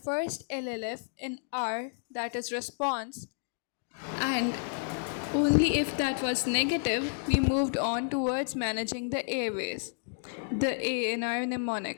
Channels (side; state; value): right; silent; digital silence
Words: LLF in R, that is response, and only if that was negative, we moved on towards managing the airways, the A in our